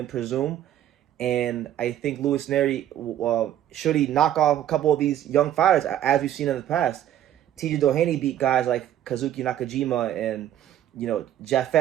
presume. And I think Louis Nery, should he knock off a couple of these young fighters, as we've seen in the past, TJ Doheny beat guys like Kazuki Nakajima and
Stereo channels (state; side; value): quieter; left; 11.6 dB